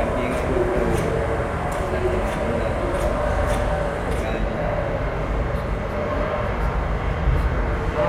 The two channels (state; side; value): identical; both; correlation 1.00